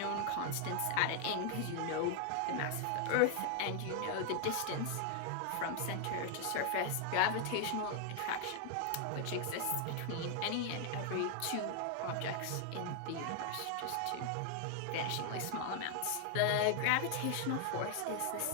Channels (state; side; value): different; both; correlation 0.00